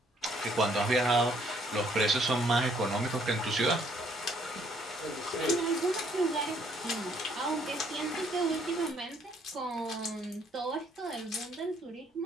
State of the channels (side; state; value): both; normal; correlation 0.66